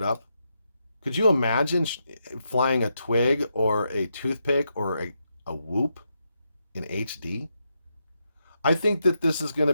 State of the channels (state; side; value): inverted; both; correlation -0.83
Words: up. Could you imagine flying a twig or a toothpick or a whoop in HD? I think that this is going to